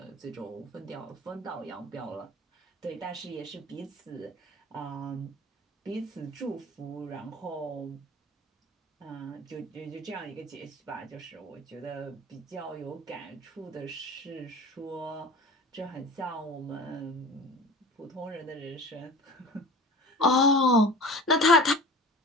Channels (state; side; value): normal; both; correlation 0.38